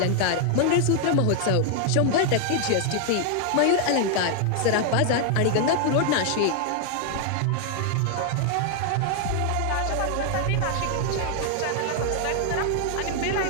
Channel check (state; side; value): different; both; correlation 0.00